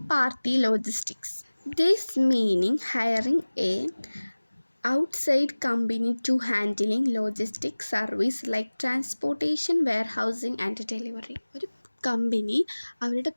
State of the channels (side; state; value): both; inverted; correlation -1.00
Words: party logistics. This meaning hiring a outside company to handling logistic service like transportation, warehousing and delivery. ഒരു കമ്പനി അവരുടെ